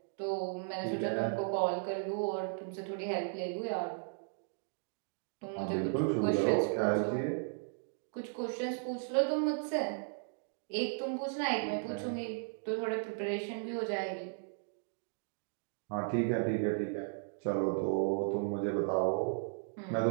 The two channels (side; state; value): left; silent; digital silence